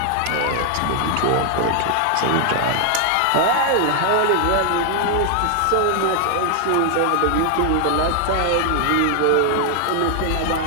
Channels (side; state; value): both; different; correlation 0.00